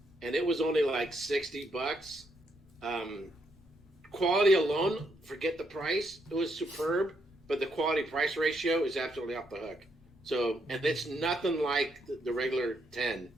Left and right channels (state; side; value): normal; both; correlation 0.76